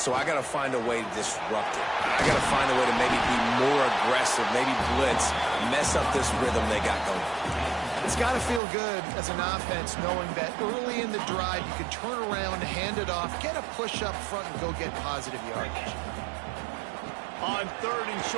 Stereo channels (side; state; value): left; drops out; at 8.6 s